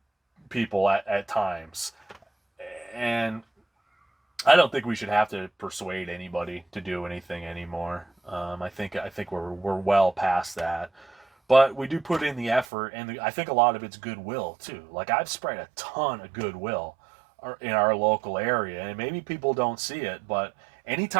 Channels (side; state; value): left; drops out; at 12.7 s